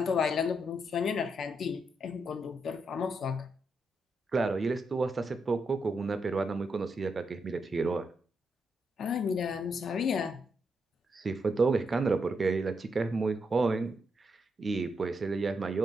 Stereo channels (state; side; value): normal; both; correlation 0.81